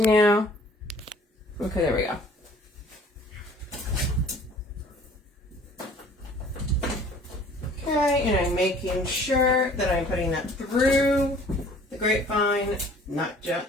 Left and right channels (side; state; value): both; normal; correlation 0.52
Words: Okay, there we go. Okay, and I'm making sure that I'm putting that through the grapevine, not